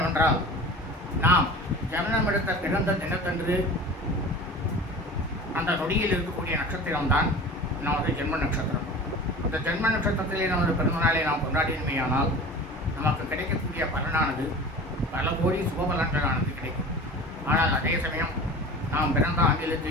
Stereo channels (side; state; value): both; normal; correlation 0.37